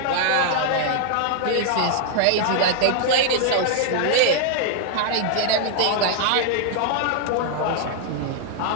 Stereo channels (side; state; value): both; different; correlation -0.01